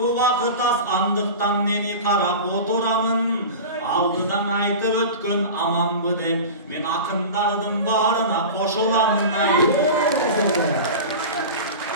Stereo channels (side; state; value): both; inverted; correlation -0.31